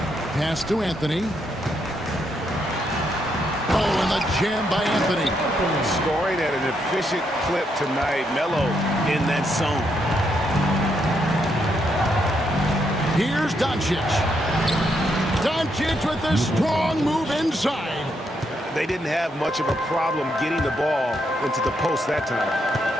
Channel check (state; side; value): normal; both; correlation 0.78